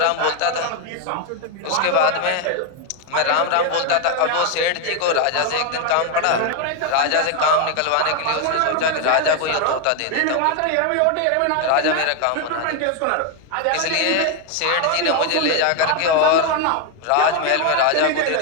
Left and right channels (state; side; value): different; both; correlation 0.01